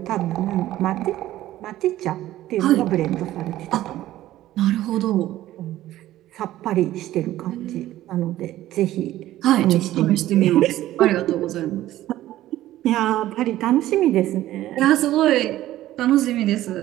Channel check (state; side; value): quieter; left; 14.5 dB